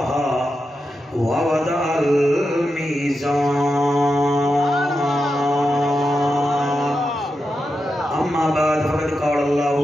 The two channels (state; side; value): normal; both; correlation 0.88